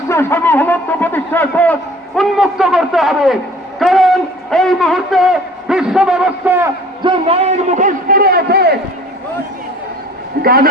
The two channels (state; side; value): normal; both; correlation 0.48